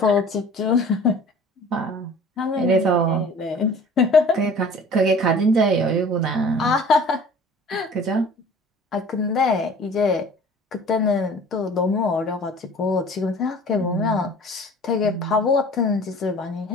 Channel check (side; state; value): both; normal; correlation 0.46